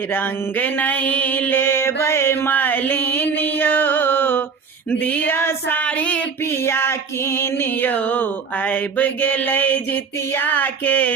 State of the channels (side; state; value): left; quieter; 5.6 dB